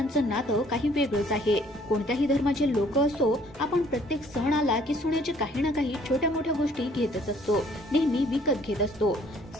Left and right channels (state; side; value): normal; both; correlation 0.60